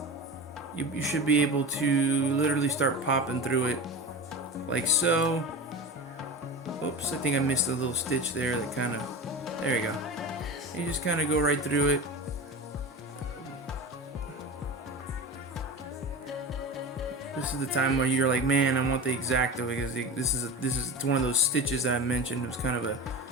you should be able to literally start popping through it like so. Oops, I think I missed a little stitch there that kind of, there you go. You just kind of go right through it. This is the time where you're like, man, I want the X-Acto, because this is one of those stitches that I mentioned. It was kind of a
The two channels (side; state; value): both; normal; correlation 0.28